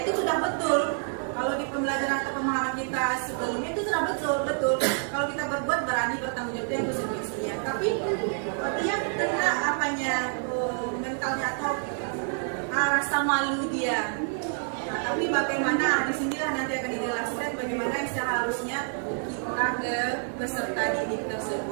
itu sudah betul. Kalau di pembelajaran atau pemahaman kita sebelumnya itu sudah betul. Kalau kita berbuat berani bertanggung jawab, itu yang konsekuensinya. Tapi dia kena mentalnya atau rasa malu dia. Nah, tapi bagaimana di sinilah nanti akan dijelaskan bagaimana yang seharusnya kita ke peserta didik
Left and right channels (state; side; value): silent; left; 59 dB below the other